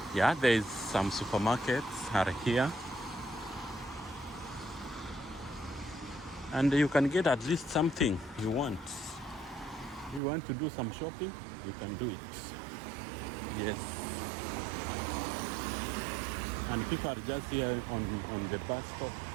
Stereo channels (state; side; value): drops out; left; at 10.2 s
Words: there is some supermarkets are here. And you can get at least something you want. If you want to do some shopping, you can do it. Yes. And people are just here on the bus stop,